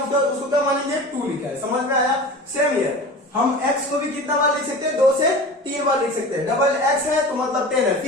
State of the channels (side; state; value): both; normal; correlation 0.35